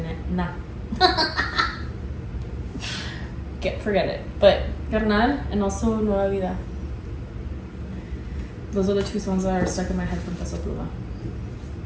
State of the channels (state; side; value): identical; both; correlation 1.00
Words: forget it. But Carnal and also Nueva Vida. Those are the two songs that are stuck in my head from Peso Pluma.